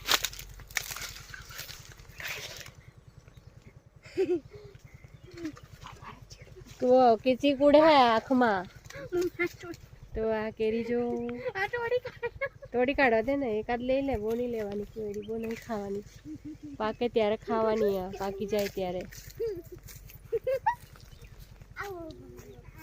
तो किची कूड़े है आँख में, तो आ केरी जो तोड़ी काढ़वा दे ने, एकाद ले ले, वो नहीं लेवानी केरी, वो नहीं खावानी, पाके त्यारे खावानी आ, पाकी जाए त्यारे।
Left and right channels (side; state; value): both; identical; correlation 1.00